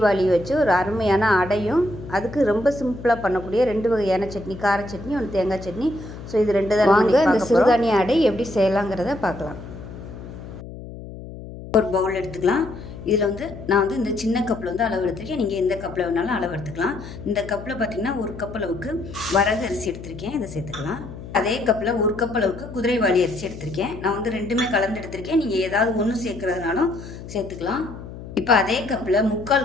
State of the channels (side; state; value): left; noise; hum, 13 dB below the sound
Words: வச்சு ஒரு அருமையான அடையும், அதுக்கு ரொம்ப சிம்பிளாக பண்ணக்கூடிய 2 வகையான சட்னி, கார சட்னி, ஒன்று தேங்காய் சட்னி. ஸோ இது 2 தான் வாங்க இந்த சிறுதானிய அடை எப்படி செய்யலாங்கிறத பார்க்கலாம். ஒரு பவுல் எடுத்துக்கலாம். இதில் நான் இந்த சின்ன கப்பில் அளவு எடுத்திருக்கேன். நீங்கள் எந்த கப்பில் வேணாலும் அளவு எடுத்துக்கலாம். இந்த கப்பில் பார்த்திங்கன்னா 1 கப் அளவுக்கு வரகு அரிசி எடுத்திருக்கேன். இதை சேர்த்துக்கலாம். அதே கப்பில் 1 கப் அளவுக்கு குதிரைவாலி அரிசி எடுத்திருக்கேன். நான் 2மே கலந்து எடுத்திருக்கேன். நீங்கள் ஏதாவது ஒன்று சேர்க்குறதுனாலும் சேர்த்துக்கலாம். இப்போ அதே கப்பில் 3/4